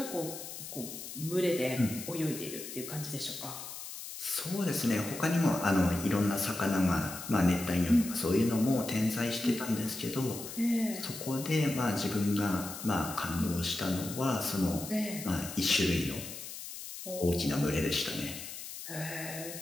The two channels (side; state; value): left; noise; hiss, 10 dB below the sound